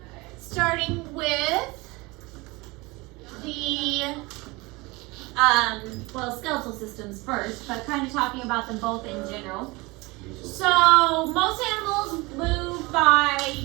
starting with the skeletal systems first, but kind of talking about them both in general. So most animals move by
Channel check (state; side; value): quieter; left; 23.9 dB